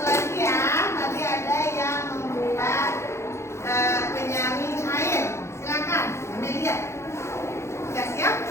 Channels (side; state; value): right; late; 0.13 ms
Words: lagi ya, tadi ada yang membuat penyaring air. Silakan, Amelia. Sudah siap?